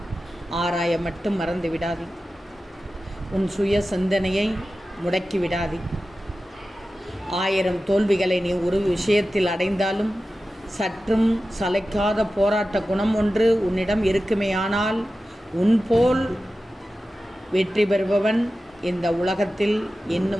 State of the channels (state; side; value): normal; both; correlation 0.94